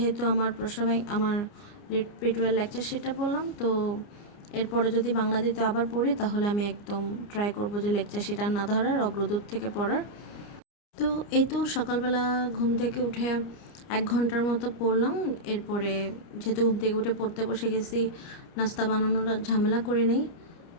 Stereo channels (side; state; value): right; late; 29 ms